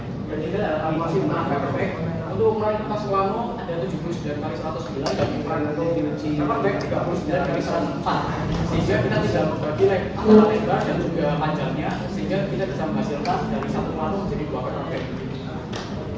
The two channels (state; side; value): identical; both; correlation 1.00